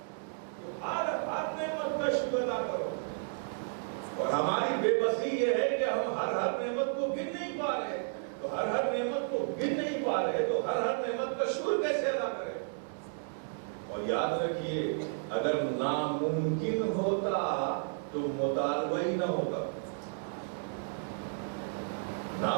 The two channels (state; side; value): silent; left; digital silence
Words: ہر نعمت کا شکر ادا کرو. اور ہماری بے بسی یہ ہے کہ ہم ہر نعمت کو گن نہیں پا رہے. تو ہر نعمت کو گن نہیں پا رہے تو ہر نعمت کا شکر کیسے ادا کریں؟ اور یاد رکھیے, اگر ناممکن ہوتا تو مطالبہ ہی نہ ہوتا.